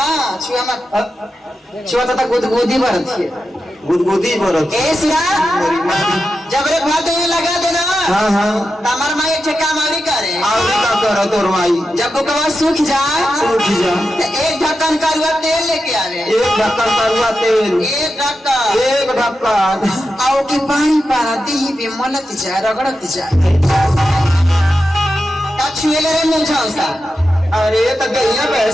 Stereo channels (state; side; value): normal; both; correlation 0.90